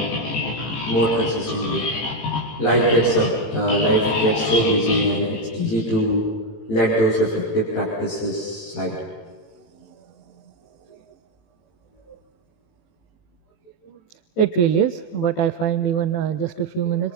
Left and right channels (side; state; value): right; late; 18 ms